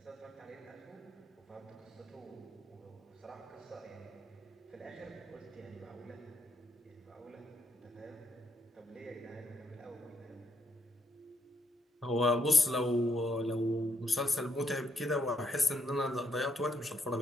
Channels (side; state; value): both; normal; correlation 0.75